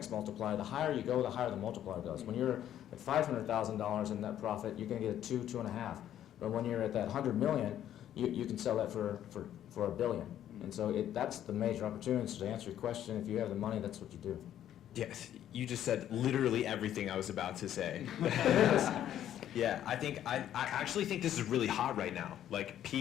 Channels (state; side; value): quieter; right; 11.1 dB